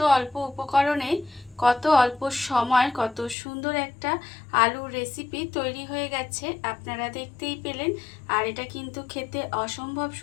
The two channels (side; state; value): right; drops out; at 3.4 s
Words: অল্প উপকরণে কত অল্প সময় কত সুন্দর একটা আলুর রেসিপি তৈরি হয়ে গেছে, আপনারা দেখতেই পেলেন। আর এটা কিন্তু খেতে অসম্ভব